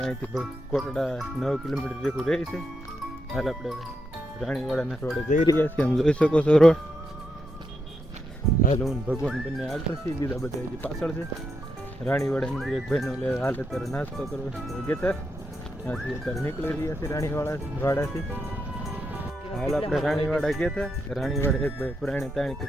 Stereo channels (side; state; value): both; normal; correlation 0.82